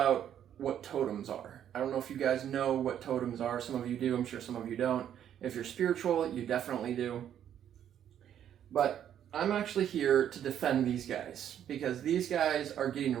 what totems are. I don't know if you guys know what totems are. Some of you do. I'm sure some of you don't. If you're spiritual, you definitely do. But I'm actually here to defend these guys because these guys are getting a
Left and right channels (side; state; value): left; quieter; 10.0 dB